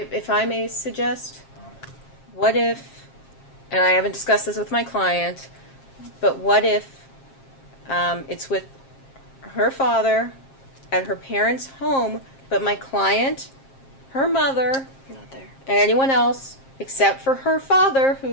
If I may suggest, what if, and I haven't discussed this with my client, but what if it's with her father at her parents' home, but my client, her mother, Not there. and anyone else, except for her father,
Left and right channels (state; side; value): late; right; 7.5 ms